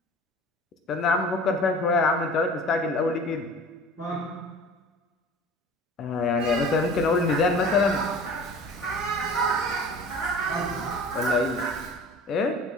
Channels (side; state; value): both; normal; correlation 0.42